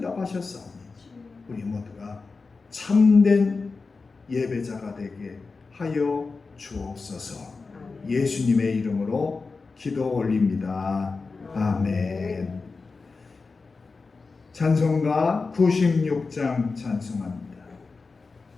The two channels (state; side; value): quieter; right; 4.2 dB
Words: 하셨사오니 우리 모두가 참된 예배자가 되게 하여 주옵소서. 예수님의 이름으로 기도 올립니다. 아멘. 찬송가 96장 찬송합니다.